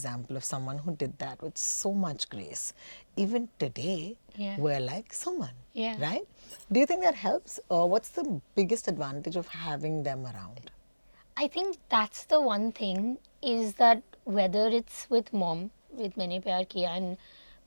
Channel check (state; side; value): inverted; both; correlation -1.00